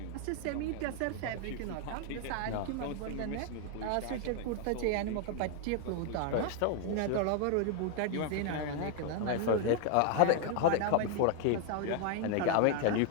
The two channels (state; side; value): different; both; correlation 0.00